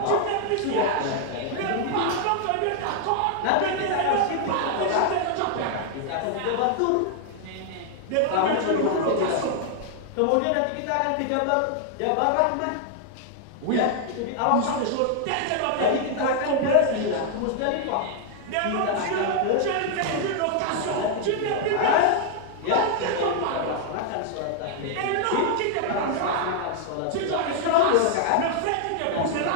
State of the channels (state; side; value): different; both; correlation 0.00